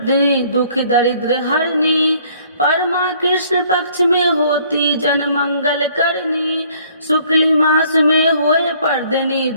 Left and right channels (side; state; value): both; inverted; correlation -0.60